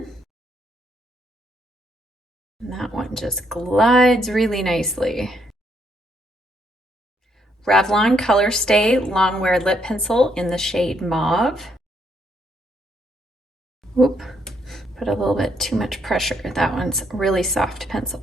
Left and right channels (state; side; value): normal; both; correlation 0.73